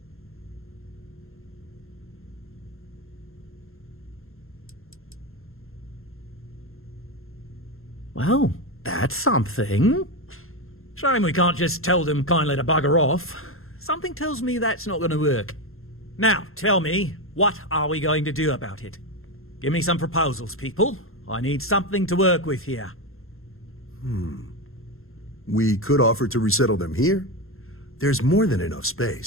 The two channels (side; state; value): right; late; 0.61 ms